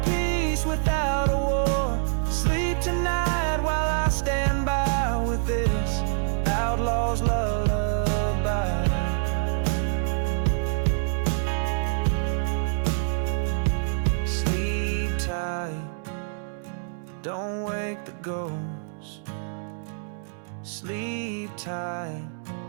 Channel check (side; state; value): left; silent; digital silence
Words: peace without a war. Sleep tonight while I stand by with this outlaw's lullaby. Don't wake the ghost. Sleep tight.